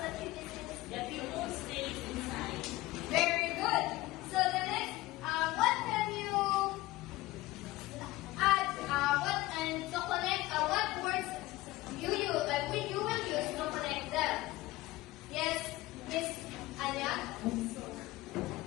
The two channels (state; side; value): quieter; right; 18.4 dB